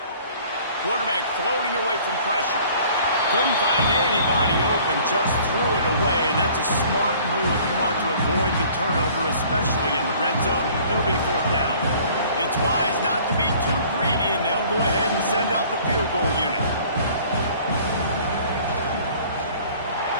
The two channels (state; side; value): inverted; both; correlation -0.52